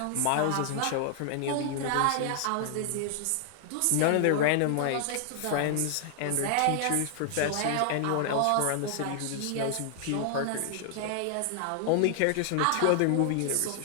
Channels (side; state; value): both; different; correlation 0.00